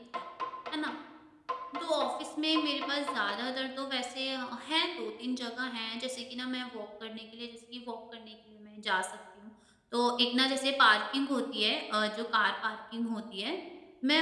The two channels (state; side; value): identical; both; correlation 1.00